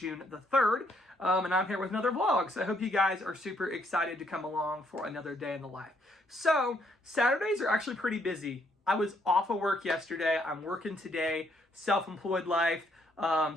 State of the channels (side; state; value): both; normal; correlation 0.71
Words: the 3rd, and I'm here with another vlog. So I hope you guys are super excited to come along for another day in the life. So Saturdays are actually pretty busy. I was off of work yesterday. I'm working today, self-employed life.